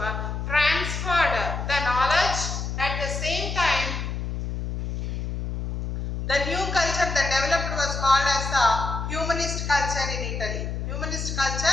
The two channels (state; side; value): noise; left; hum, 4 dB below the sound